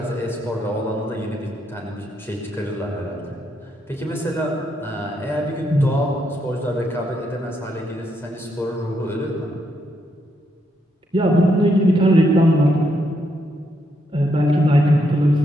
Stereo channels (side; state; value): both; normal; correlation 0.78